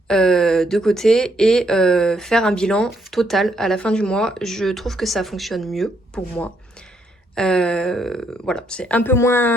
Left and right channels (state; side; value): normal; both; correlation 0.74